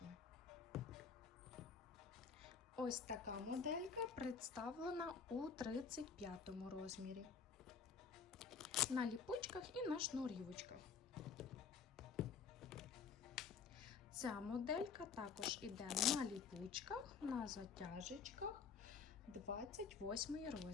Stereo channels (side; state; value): right; quieter; 5.8 dB